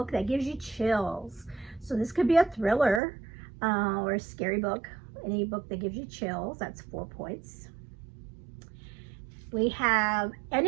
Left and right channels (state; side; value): drops out; left; at 3.0 s